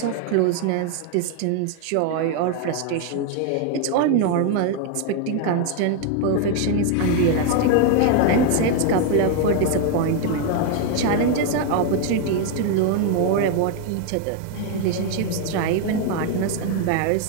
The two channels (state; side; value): different; both; correlation 0.01